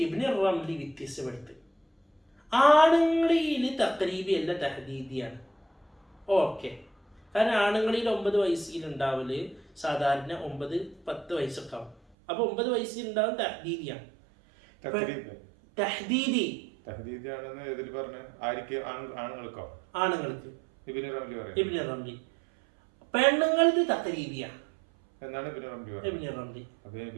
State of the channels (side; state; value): left; drops out; at 12.0 s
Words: ഇബ്നു റംലി വ്യത്യസ്തപ്പെടുത്തി ആണുങ്ങളിൽ തഖ്രീബി അല്ല തഹദീദിയാണ്. ഓക്കെ, കാരണം ആണുങ്ങളിൽ 9 വയസ്സിലുണ്ടാവല് സാധാരണ 9-10 വയസ്സൊക്കെ ആവും. അപ്പൊ 9 വയസ്സിലുണ്ടാവും തഹദീദിയാണ്. ആണുങ്ങൾക്ക് ഇബ്നു റംലി, പെണ്ണുങ്ങൾക്ക് തഖ്രീബിയാണ്. ഇബ്നു റംലി